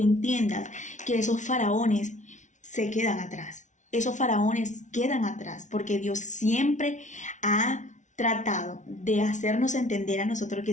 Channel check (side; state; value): right; late; 0.36 ms